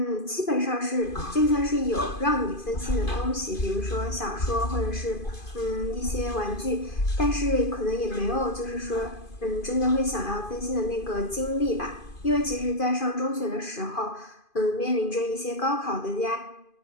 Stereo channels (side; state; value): right; late; 2.5 ms